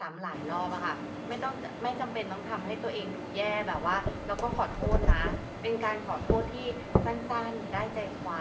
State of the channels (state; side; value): identical; both; correlation 1.00